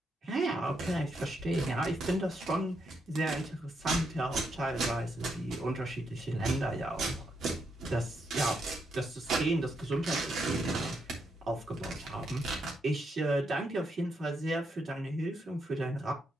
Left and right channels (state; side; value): normal; both; correlation 0.79